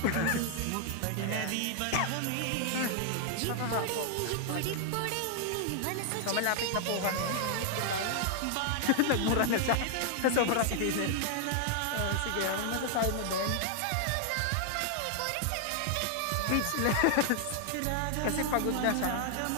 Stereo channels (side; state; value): both; different; correlation 0.00